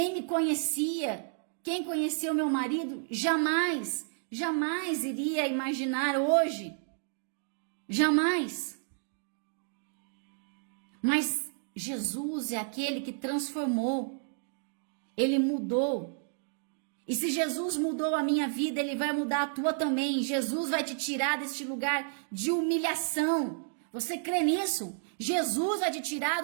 me conhecia, quem conhecia o meu marido, jamais iria imaginar hoje. Jamais. Mas Jesus é aquele que transformou. Ele mudou. E se Jesus mudou a minha vida, Ele vai mudar a tua também. Jesus vai te tirar deste lugar de humilhação. Você crê nisso? Jesus vai te tirar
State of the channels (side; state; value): left; silent; digital silence